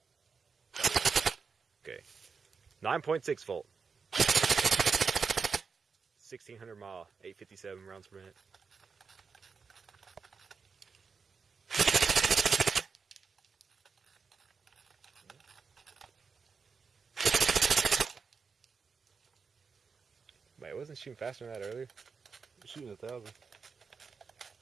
Okay, 9.6 volt, 1600 mAh, 857 rounds per minute. Wait, it wasn't shooting faster than that earlier? I'm shooting 1,000.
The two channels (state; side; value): quieter; left; 5.3 dB